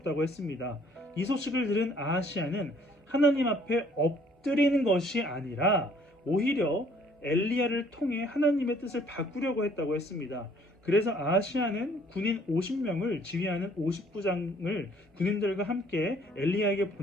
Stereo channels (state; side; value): normal; both; correlation 0.60